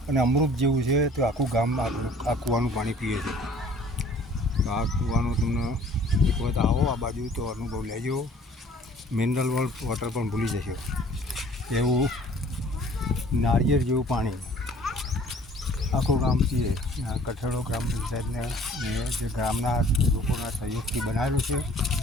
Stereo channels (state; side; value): normal; both; correlation 0.53